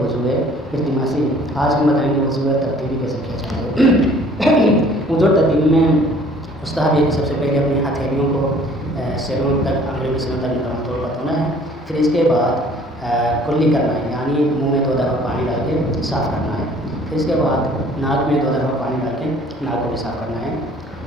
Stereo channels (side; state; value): both; normal; correlation 0.54